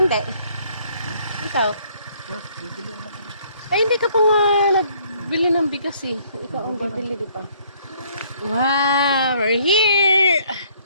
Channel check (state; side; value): inverted; both; correlation -0.62